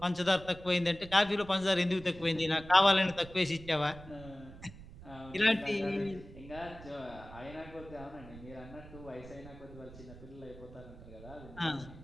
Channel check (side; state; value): right; noise; rumble, 17 dB below the sound